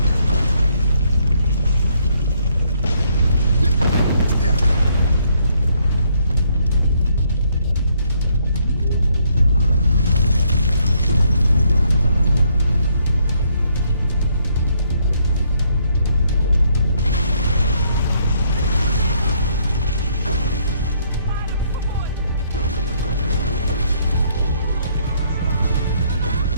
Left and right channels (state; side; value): inverted; both; correlation -0.70